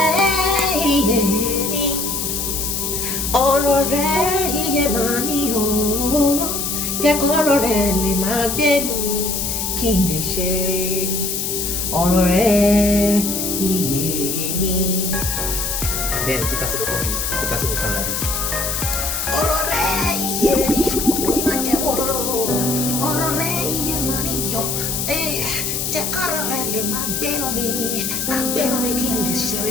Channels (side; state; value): left; noise; hiss, 1 dB below the sound